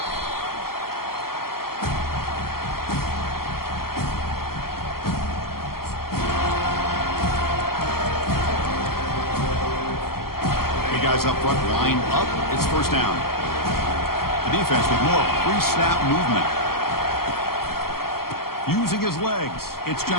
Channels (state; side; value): late; right; 0.93 ms